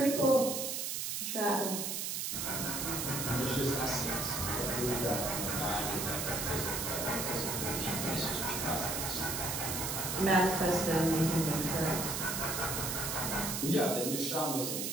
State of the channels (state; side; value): noise; right; hiss, 2 dB below the sound